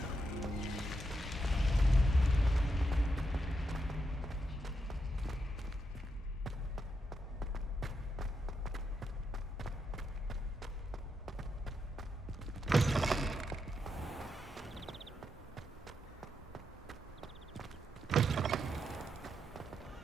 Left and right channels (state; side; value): normal; both; correlation 0.83